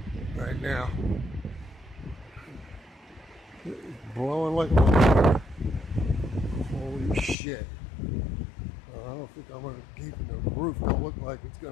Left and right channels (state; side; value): drops out; right; at 7.4 s